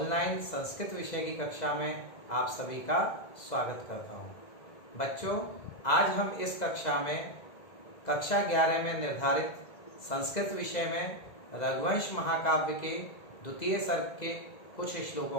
संस्कृत विषय की कक्षा में आप सभी का स्वागत करता हूं। बच्चों, आज हम इस कक्षा में कक्षा 11 में निर्धारित संस्कृत विषय में रघुवंश महाकाव्य के द्वितीय सर्ग के कुछ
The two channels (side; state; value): right; late; 2.0 ms